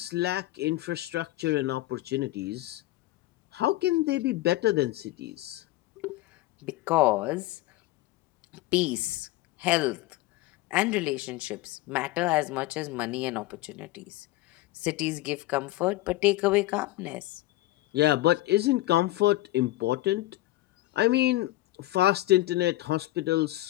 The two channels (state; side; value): quieter; right; 17.6 dB